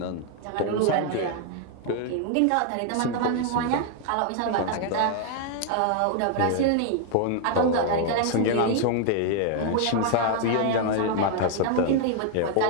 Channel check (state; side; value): different; both; correlation 0.00